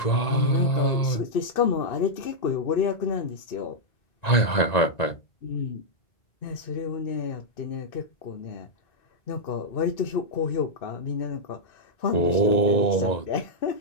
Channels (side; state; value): right; late; 1.9 ms